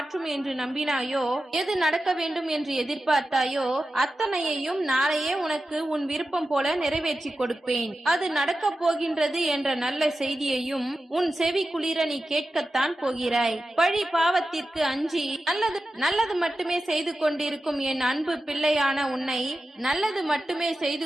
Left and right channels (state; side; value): normal; both; correlation 0.92